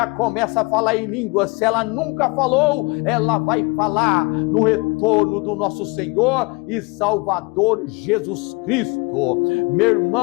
começa a falar em línguas. Se ela nunca falou, ela vai falar no retorno do nosso Senhor e Salvador Jesus Cristo. Meu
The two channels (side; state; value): right; quieter; 27.8 dB